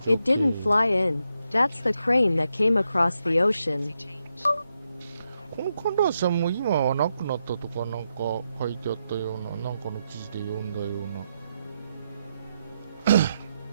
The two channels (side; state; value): both; inverted; correlation -0.84